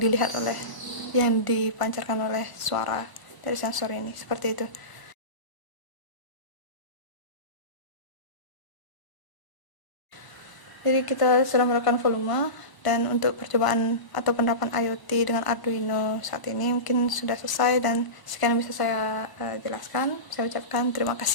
dipancarkan oleh suara dari sensor ini, seperti itu. Jadi kita sudah melakukan volume, dan untuk percobaan atau penerapan IoT dengan Arduino saat ini mungkin sudah selesai, dan sekian yang bisa saya jelaskan. Saya ucapkan terima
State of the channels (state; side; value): late; right; 1.0 ms